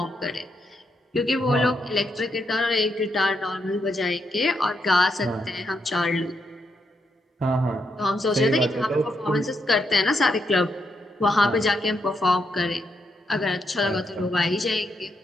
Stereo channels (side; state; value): both; normal; correlation 0.80